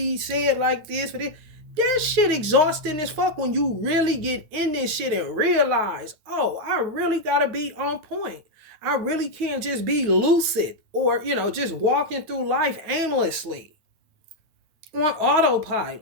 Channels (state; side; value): late; left; 9.2 ms